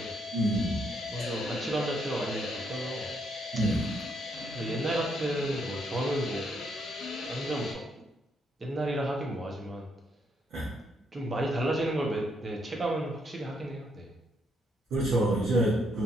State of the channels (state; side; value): normal; both; correlation 0.74